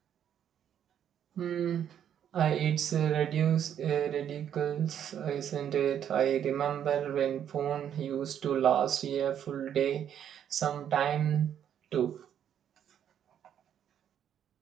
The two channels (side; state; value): left; quieter; 9.4 dB